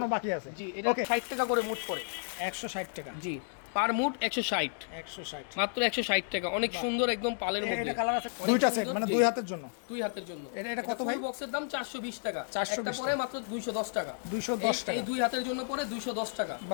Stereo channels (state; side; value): silent; right; digital silence